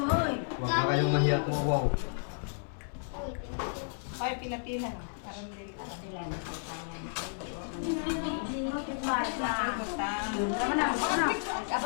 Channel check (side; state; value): right; silent; 56 dB below the other